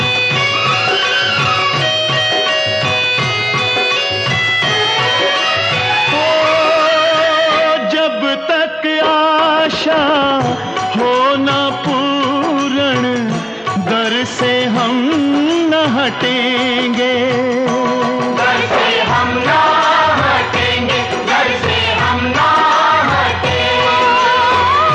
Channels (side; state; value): both; identical; correlation 1.00